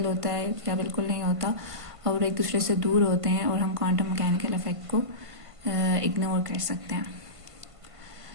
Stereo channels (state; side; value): late; left; 1.5 ms